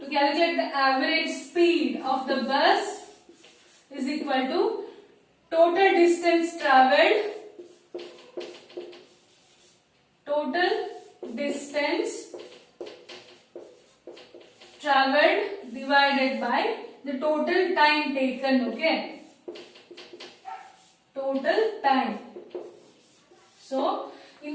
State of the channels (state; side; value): identical; both; correlation 1.00